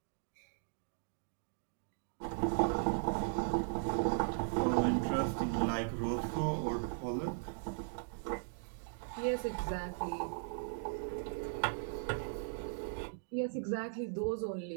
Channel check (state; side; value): silent; left; digital silence